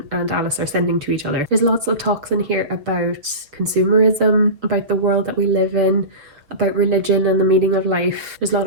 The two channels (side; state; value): left; late; 6.6 ms